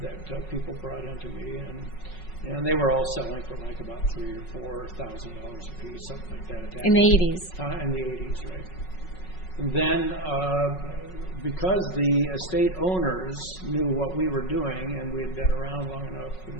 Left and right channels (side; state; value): right; late; 5.4 ms